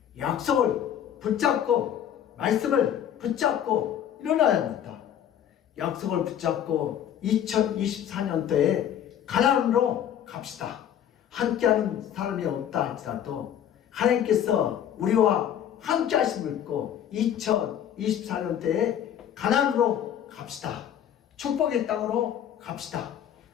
약속을 붙잡고 말씀을 붙잡고 일어나야 합니다. 약속을 붙잡고 2024년도에 가나안으로 갑시다. 함께하는 사람이 없다 할지라도 하나님께서 우리와 함께 하심을 믿고 2024년도에 가나안으로 갑시다. 축복의 땅으로 갑시다.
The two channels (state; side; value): quieter; right; 9.9 dB